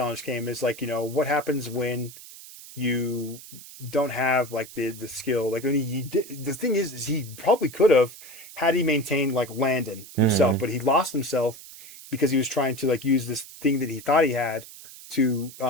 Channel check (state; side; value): noise; right; hiss, 17 dB below the sound